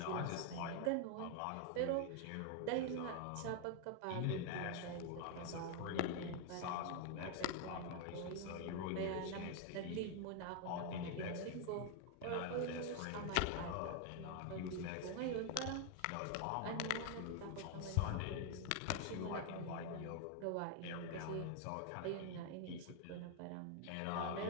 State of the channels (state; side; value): different; both; correlation 0.00